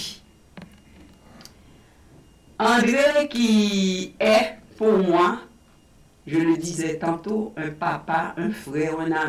André qui est, pour moi, je le disais tantôt, un papa, un frère, un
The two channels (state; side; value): identical; both; correlation 1.00